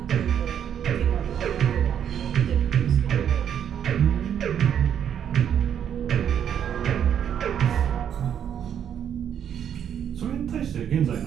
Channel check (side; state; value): left; quieter; 9.0 dB